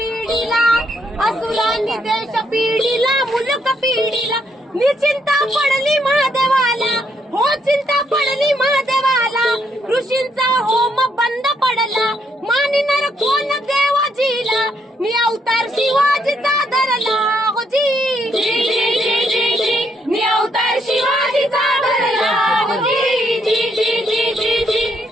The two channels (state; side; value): normal; both; correlation 0.74